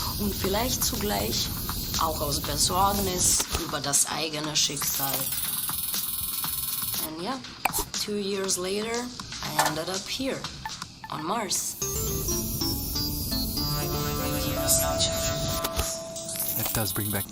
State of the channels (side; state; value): both; identical; correlation 1.00